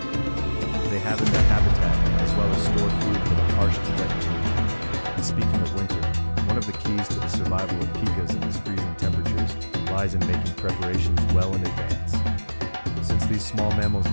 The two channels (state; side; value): inverted; both; correlation -1.00